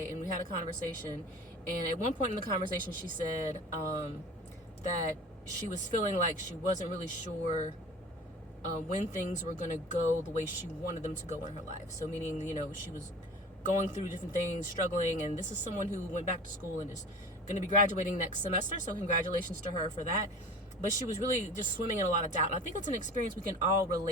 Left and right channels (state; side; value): normal; both; correlation 0.39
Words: and we had a conversation. And at one point in the conversation, she said that she was feeling like she wasn't really sure when things were going to go the way she wanted them to go in her life. So meaning, she was going through different things, struggling. And this is someone who went back to school and is going to be graduating next semester. So congratulations to her for that. But she was really just swimming in a lot of doubt. And I think it's an experience we can all